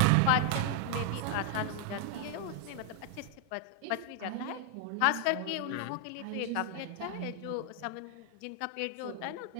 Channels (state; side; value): different; both; correlation 0.00